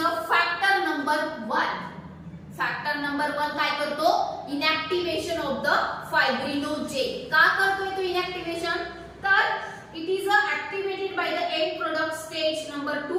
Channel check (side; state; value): both; identical; correlation 1.00